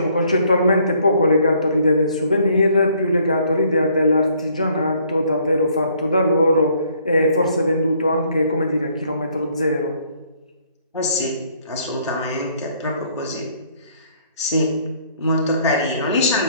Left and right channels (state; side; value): inverted; both; correlation -0.64